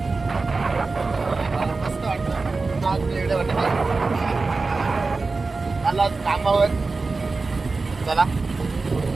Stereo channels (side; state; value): left; quieter; 3.9 dB